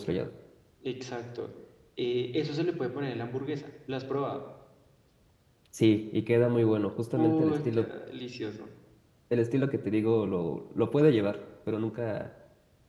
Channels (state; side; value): identical; both; correlation 1.00